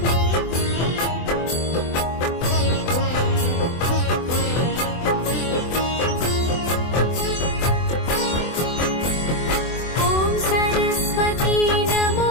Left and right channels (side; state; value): right; late; 24 ms